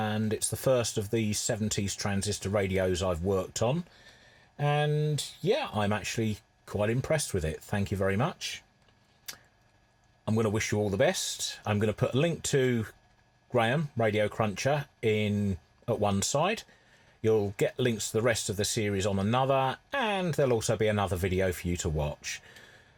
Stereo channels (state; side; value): identical; both; correlation 1.00